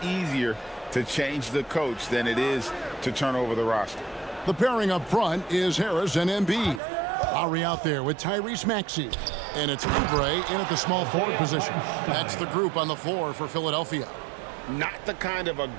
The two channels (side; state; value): left; drops out; at 6.8 s